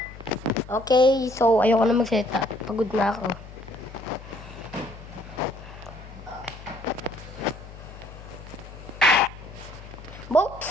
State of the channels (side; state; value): left; noise; hum, 15 dB below the sound